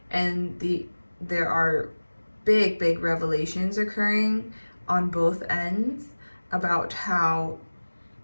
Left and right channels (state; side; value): inverted; both; correlation -1.00